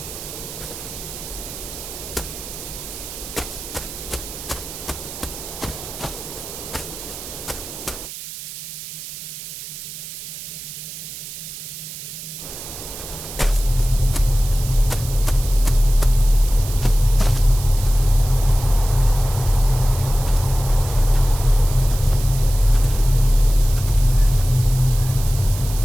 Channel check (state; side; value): noise; right; hiss, 11 dB below the sound